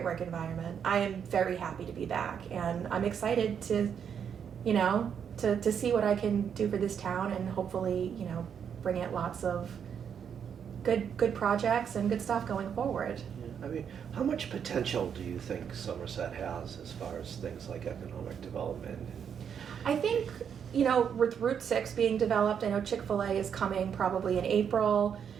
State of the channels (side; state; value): left; quieter; 7.7 dB